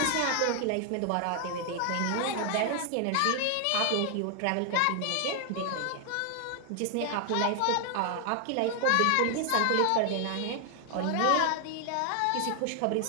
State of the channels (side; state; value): both; different; correlation 0.00